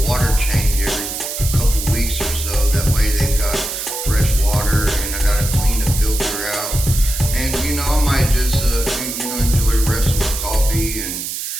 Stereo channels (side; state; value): right; noise; hiss, 5 dB below the sound